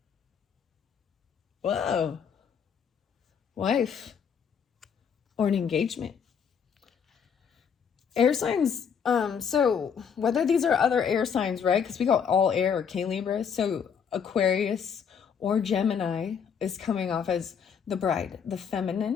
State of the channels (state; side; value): quieter; right; 7.1 dB